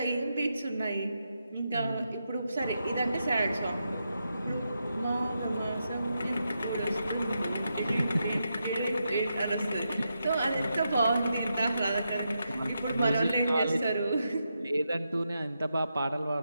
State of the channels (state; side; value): inverted; both; correlation -0.85